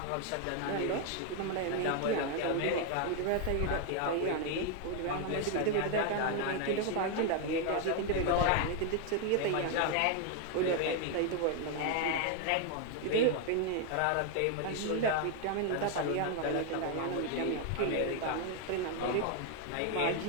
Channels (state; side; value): different; both; correlation 0.00